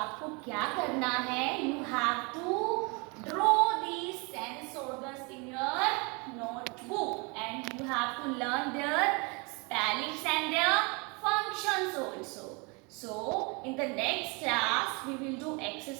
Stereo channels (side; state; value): left; quieter; 30.3 dB